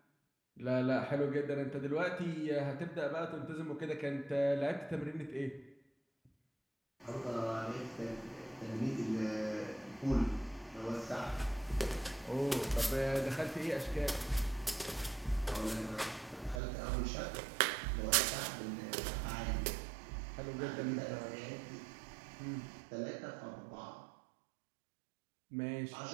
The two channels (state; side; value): drops out; left; at 16.6 s